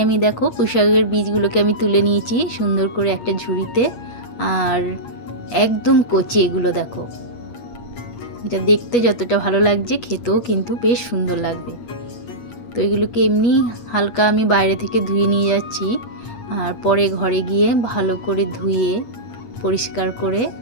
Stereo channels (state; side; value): late; right; 8.2 ms